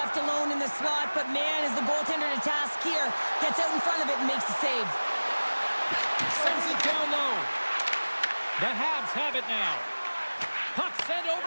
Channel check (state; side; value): inverted; both; correlation -1.00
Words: alone in the slot, but man, is the goaltender to task here. Gets out in front of it and makes the save. Sends it down low. The Habs have it now. Puck sent